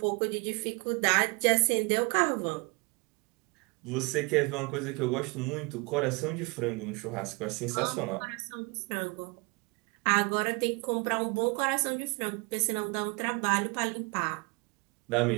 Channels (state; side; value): quieter; left; 29.6 dB